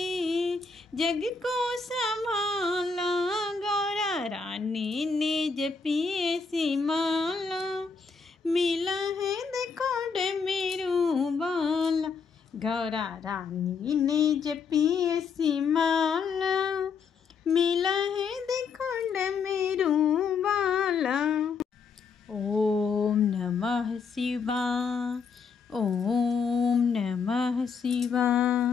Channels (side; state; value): right; quieter; 5.3 dB